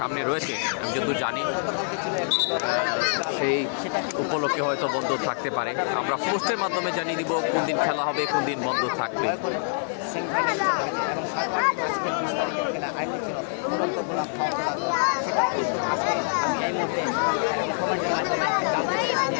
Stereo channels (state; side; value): silent; right; 61 dB below the other